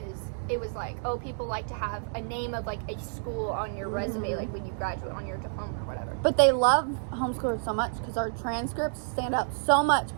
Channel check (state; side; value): silent; left; digital silence